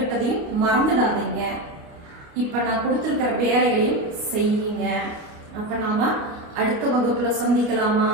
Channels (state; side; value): late; left; 29 ms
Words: மறந்துடாதீங்க. இப்ப நான் கொடுத்திருக்கிற வேலைகளையும் செய்யுங்க. அப்ப நாம அடுத்த வகுப்புல சந்திக்கலாமா?